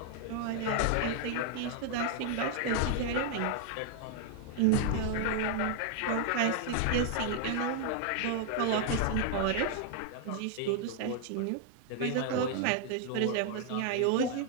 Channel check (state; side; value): different; both; correlation 0.00